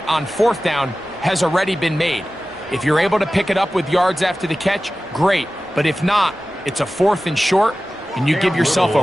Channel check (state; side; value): normal; both; correlation 0.95